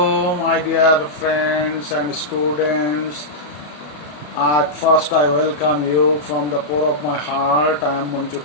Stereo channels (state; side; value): late; right; 34 ms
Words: my dear friends and students. At first, I welcome you from the core of my heart. I am Manjur